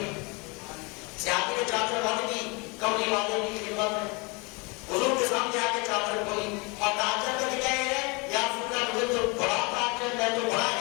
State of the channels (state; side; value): quieter; right; 28.8 dB